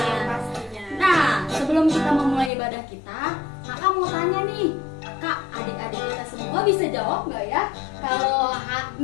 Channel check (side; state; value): right; drops out; at 2.5 s